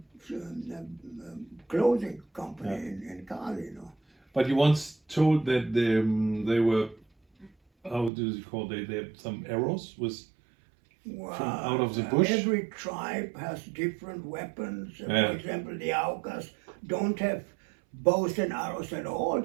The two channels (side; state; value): left; drops out; at 8.1 s